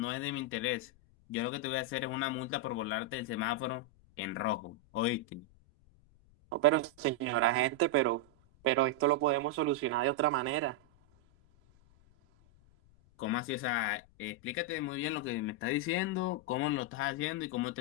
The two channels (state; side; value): noise; left; rumble, 29 dB below the sound